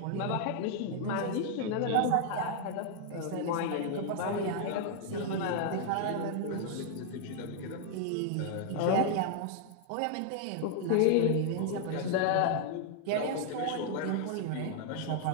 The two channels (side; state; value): both; different; correlation 0.00